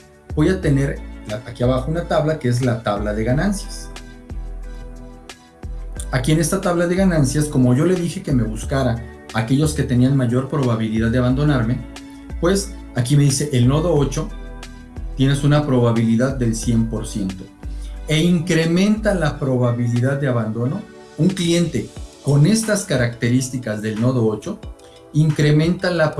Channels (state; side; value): identical; both; correlation 1.00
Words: voy a tener aquí abajo una tabla que es la tabla de ganancias. Aquí en esta tabla de ganancias, como yo le dije que me buscara aquellos que tenían mayor probabilidad de abandonarme, pues aquí me dice el nodo 8, tienes una probabilidad del 100%. E incrementa la probabilidad de abandono. Un cliente con estas características del nodo 8 incrementa la